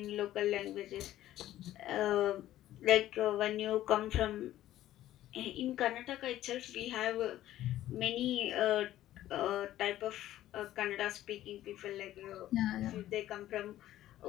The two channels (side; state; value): right; quieter; 13.7 dB